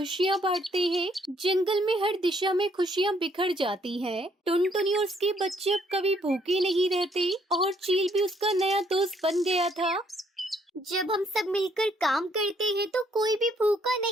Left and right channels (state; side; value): normal; both; correlation 0.67